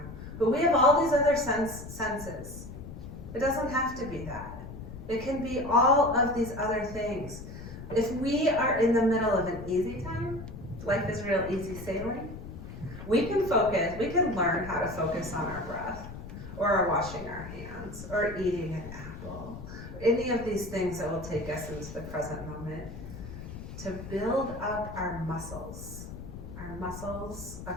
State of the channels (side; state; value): left; noise; rumble, 11 dB below the sound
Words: But we have all these other senses. It doesn't have to be that. It can be all of these other things. If we are in the middle of an easy time, life is real easy sailing, we can learn how to focus on our breath, or washing our hands, or eating an apple, any of these things that will take us into the present moment, to build up our muscles